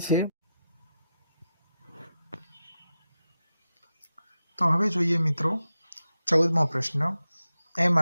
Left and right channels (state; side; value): inverted; both; correlation -0.90